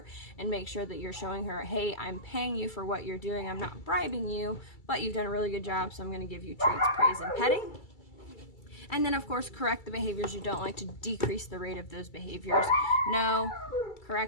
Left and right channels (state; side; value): late; right; 2.3 ms